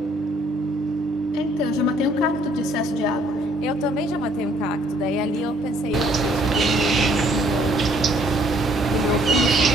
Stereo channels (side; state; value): both; normal; correlation 0.64